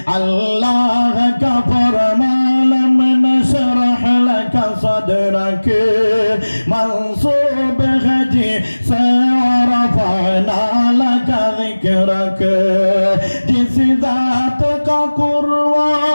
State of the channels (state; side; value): inverted; both; correlation -1.00